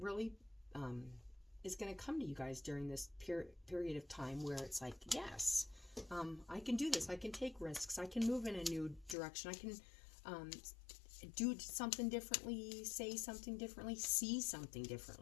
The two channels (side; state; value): right; drops out; at 9.2 s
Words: is going to come to you guys during this period of time where it's like, yes, I can do this. I can take risks. I can move in a new direction. I can do something differently, say something differently, see something